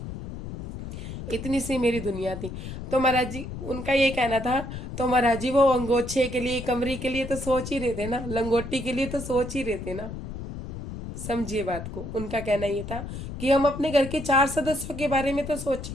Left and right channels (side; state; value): left; noise; rumble, 9 dB below the sound